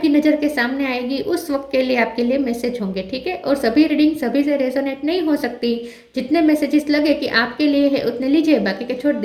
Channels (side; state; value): both; identical; correlation 1.00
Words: नज़र के सामने आएगी उस वक्त के लिए आपके लिए मैसेज होंगे, ठीक है। और सभी रीडिंग सभी से रेजोनेट नहीं हो सकती। जितने मैसेजेस लगे कि आपके लिए है उतने लीजिए, बाकी के छोड़